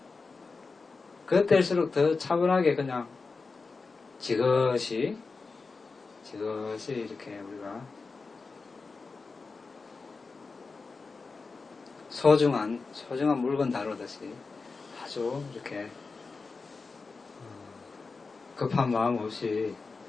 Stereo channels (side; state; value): right; quieter; 4.3 dB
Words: 그때일수록 더 차분하게 그냥 지그시 이렇게 우리가 소중한 물건 다루듯이 아주 이렇게 급한 마음 없이